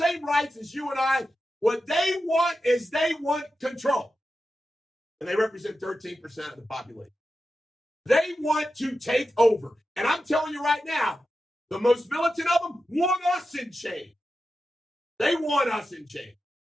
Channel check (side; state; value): both; normal; correlation 0.91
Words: rights as you and I. What they want is they want control. And they represent 13% of the population. They want to take over. And I'm telling you right now, the most militant of them want us in chains. They want us in chains.